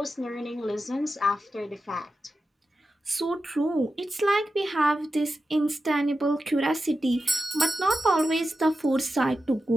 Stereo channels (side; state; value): both; normal; correlation 0.91